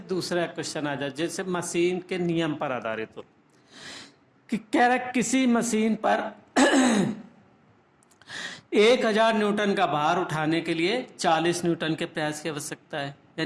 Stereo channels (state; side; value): identical; both; correlation 1.00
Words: क्वेश्चन आ जाए, जैसे मशीन के नियम पर आधारित हो कि कह रहा है किसी मशीन पर 1000 न्यूटन का भार उठाने के लिए 40 न्यूटन के प्रयास की आवश्यकता है।